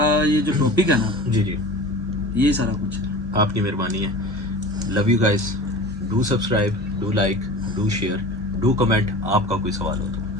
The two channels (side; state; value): both; normal; correlation 0.36